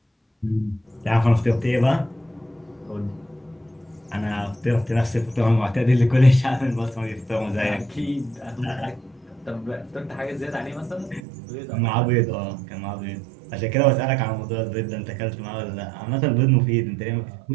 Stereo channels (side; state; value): left; drops out; at 11.2 s